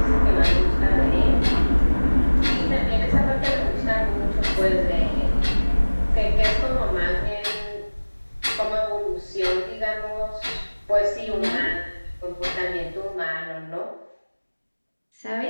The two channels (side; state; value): both; inverted; correlation -1.00